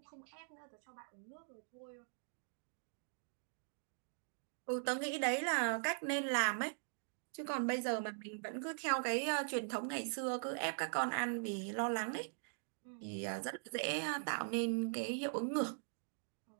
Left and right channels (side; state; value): left; silent; digital silence